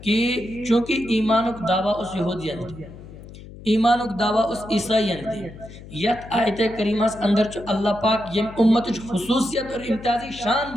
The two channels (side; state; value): left; noise; hum, 16 dB below the sound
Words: کہ چونکہ ایمانک دعویٰ اس یہودیان دی ایمانک دعویٰ اس عیسائیان دی یت آیت کریمہ اندر چھو اللہ پاک یم امت خصوصیت اور امتیازی شان